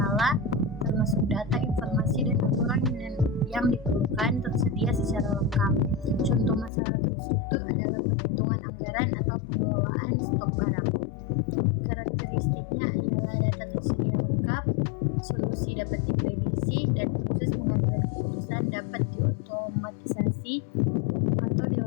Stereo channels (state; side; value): drops out; right; at 6.7 s